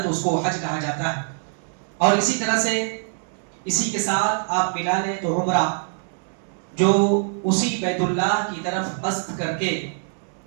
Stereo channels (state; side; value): silent; left; digital silence